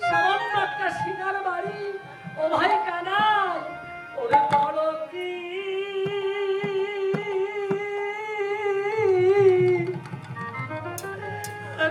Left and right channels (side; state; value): both; identical; correlation 1.00